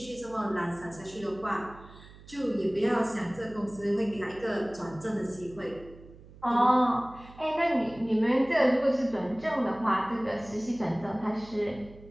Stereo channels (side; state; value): right; noise; hum, 20 dB below the sound